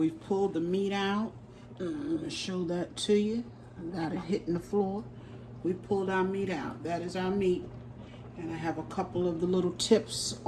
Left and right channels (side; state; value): both; identical; correlation 1.00